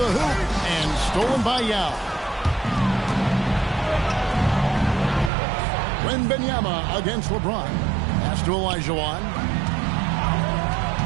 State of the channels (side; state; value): left; drops out; at 5.3 s